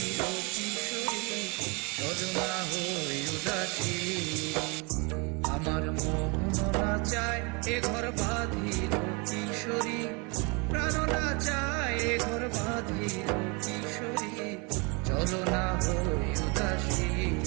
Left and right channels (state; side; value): quieter; left; 30.8 dB